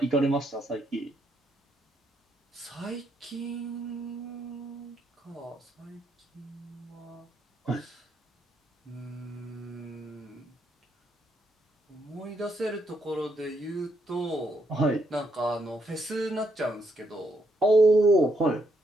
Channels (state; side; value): normal; both; correlation 0.76